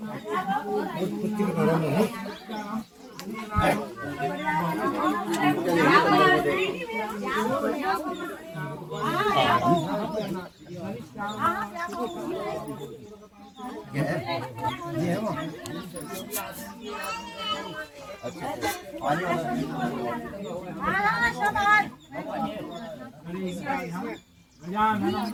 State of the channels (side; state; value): both; identical; correlation 1.00